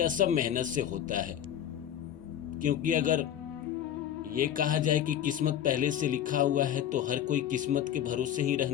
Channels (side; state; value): right; quieter; 10.5 dB